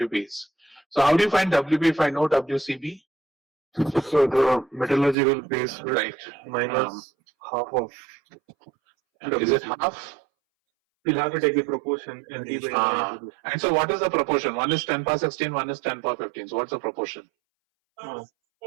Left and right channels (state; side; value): drops out; left; at 5.2 s